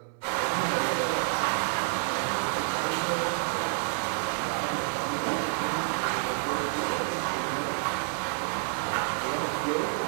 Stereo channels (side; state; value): left; silent; 59 dB below the other